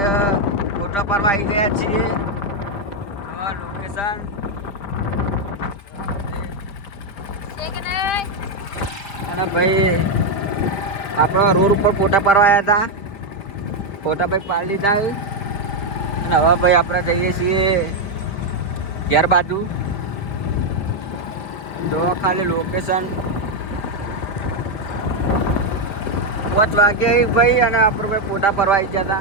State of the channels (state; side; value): late; right; 5.0 ms